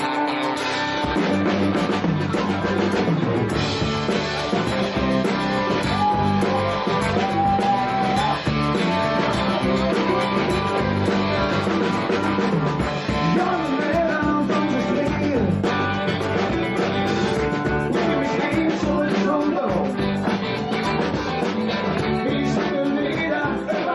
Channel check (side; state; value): both; identical; correlation 1.00